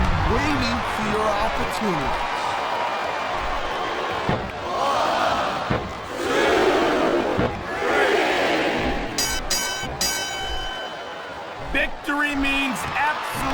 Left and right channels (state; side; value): identical; both; correlation 1.00